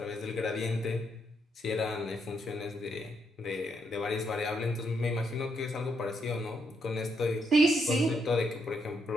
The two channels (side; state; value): both; normal; correlation 0.77